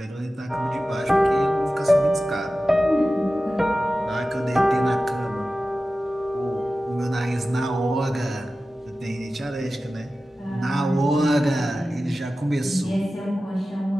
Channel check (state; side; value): normal; both; correlation 0.95